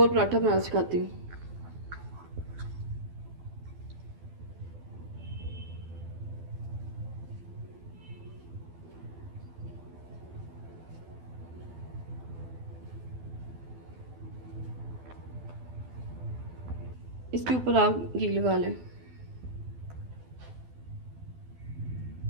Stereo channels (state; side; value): late; left; 12 ms